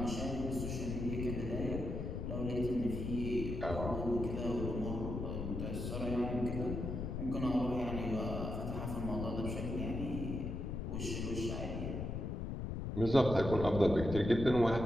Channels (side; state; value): left; noise; rumble, 4 dB below the sound